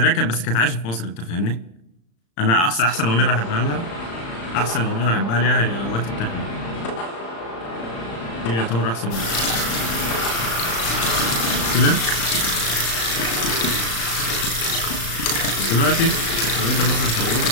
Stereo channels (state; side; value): late; right; 35 ms